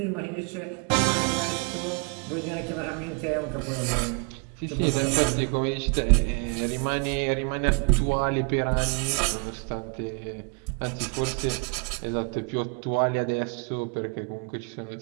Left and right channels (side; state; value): left; quieter; 34.0 dB